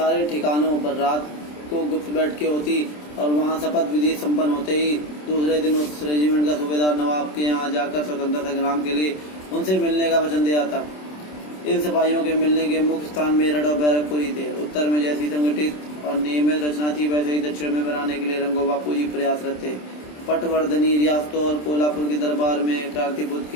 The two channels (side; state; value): right; late; 27 ms